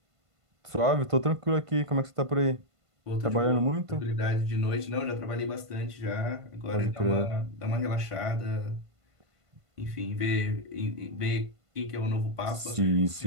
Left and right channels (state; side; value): late; left; 1.5 ms